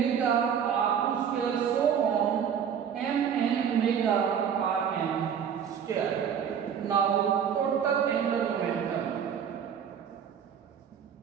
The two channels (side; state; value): left; quieter; 8.0 dB